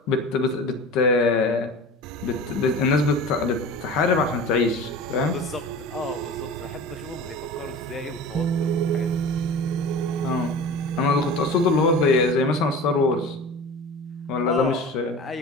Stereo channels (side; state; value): both; normal; correlation 0.36